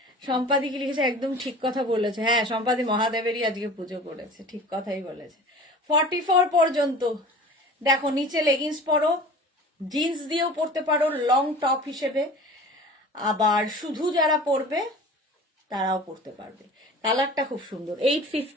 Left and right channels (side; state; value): both; normal; correlation 0.40